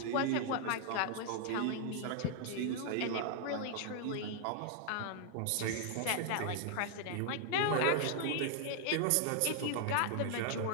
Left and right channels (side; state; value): both; different; correlation 0.00